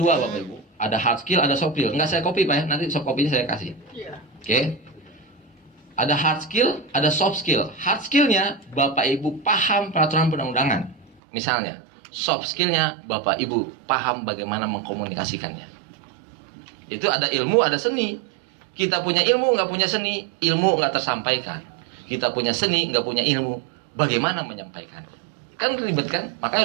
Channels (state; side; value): drops out; left; at 11.2 s